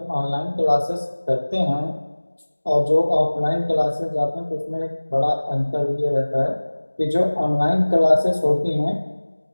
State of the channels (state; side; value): inverted; both; correlation -1.00